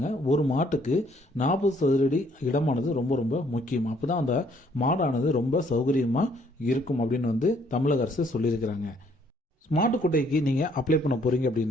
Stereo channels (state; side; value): normal; both; correlation 0.65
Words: ஒரு மாட்டுக்கு 40 சதுரடி இடமானது ரொம்ப ரொம்ப முக்கியம். அப்பதான் அந்த மாடானது ரொம்ப சௌகரியமா இருக்கும் அப்படின்னு தமிழக அரசு சொல்லியிருக்கிறாங்க. மாட்டுக்கொட்டைக்கு நீங்கள் அப்ளை பண்ண போகிறீங்க